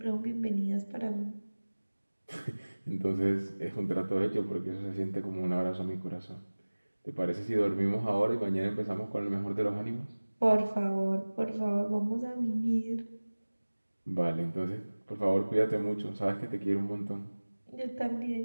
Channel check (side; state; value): both; inverted; correlation -1.00